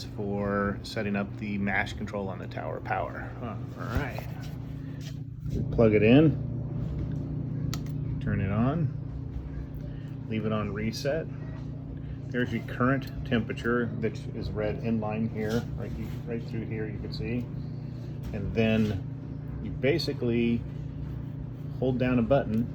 for setting up the mash control on the tower power. All right. Plug it in, turn it on, leave it on reset. There's your current temperature that is read in line here, right through here you can see. And then you basically hold down a button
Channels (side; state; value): both; identical; correlation 1.00